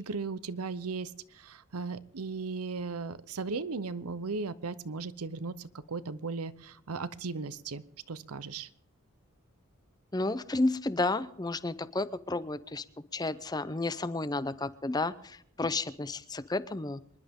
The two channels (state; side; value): normal; both; correlation 0.46